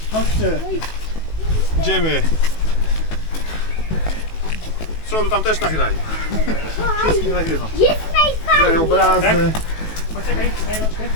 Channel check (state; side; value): late; right; 19 ms